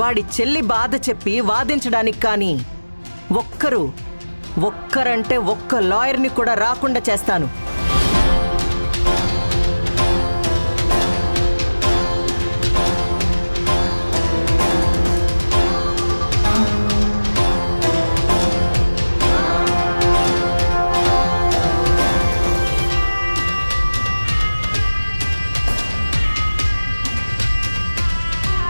వాడి చెల్లి బాధ చెప్పి వాదించడానికి కానీ ఒక్కరంటే ఒక్క లాయర్ని కూడా రాకుండా చేస్తాను.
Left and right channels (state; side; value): inverted; both; correlation -1.00